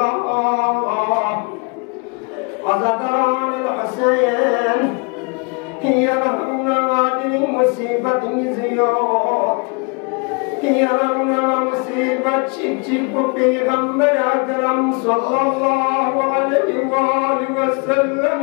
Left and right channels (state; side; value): quieter; right; 32.6 dB